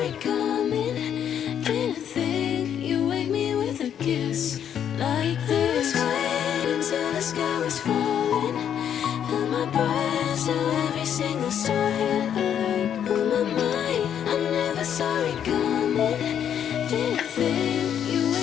coming. Didn't think you'd wake me with a kiss like this. I was waiting till the sky was falling. Held my breath till every single star had a light. On my mind, I never saw it coming. Didn't think you'd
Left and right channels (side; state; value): right; quieter; 9.1 dB